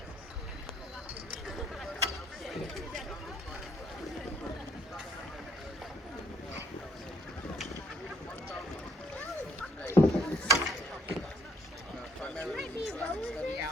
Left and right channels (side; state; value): both; normal; correlation 0.67